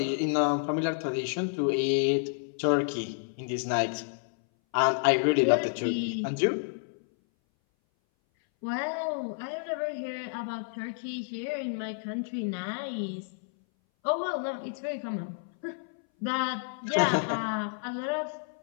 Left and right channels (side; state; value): right; silent; 58 dB below the other